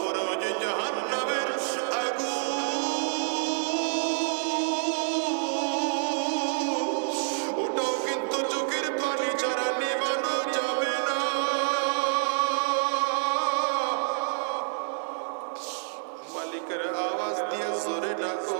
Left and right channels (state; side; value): silent; left; 58 dB below the other